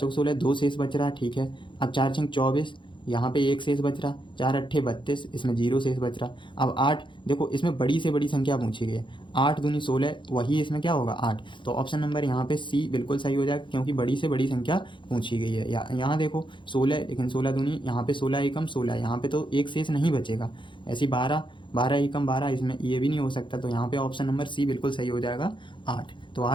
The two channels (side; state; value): right; late; 0.23 ms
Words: 16, 2 शेष बच रहा है, ठीक है। अब 4 छंग 24, यहाँ पे 1 शेष बच रहा, 4 अट्ठे 32, इसमें 0 शेष बच रहा। अब 8, देखो इसमें बड़ी से बड़ी संख्या पूछी गई है, 8 दूनी 16, वही इसमें क्या होगा 8। तो ऑप्शन नंबर यहाँ पे सी बिल्कुल सही हो जाएगा, क्योंकि बड़ी से बड़ी संख्या पूछी गई है। यहाँ देखो 16, लेकिन 16 दूनी, यहाँ पे 16 एकम 16, यहाँ पे तो एक शेष नहीं बचेगा। ऐसी 12 12 एकम 12, इसमें ये भी नहीं हो सकता। तो यहाँ पे ऑप्शन नंबर सी बिल्कुल सही हो जाएगा 8। तो